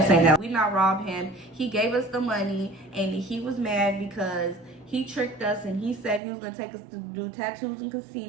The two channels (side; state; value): left; drops out; at 6.2 s